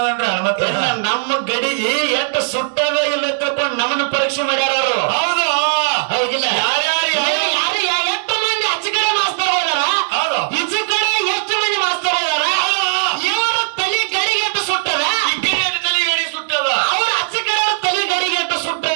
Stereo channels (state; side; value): silent; left; digital silence